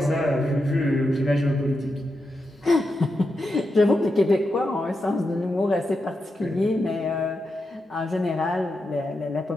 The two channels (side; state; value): both; normal; correlation 0.87